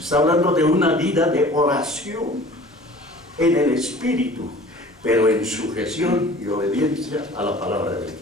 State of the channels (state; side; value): normal; both; correlation 0.46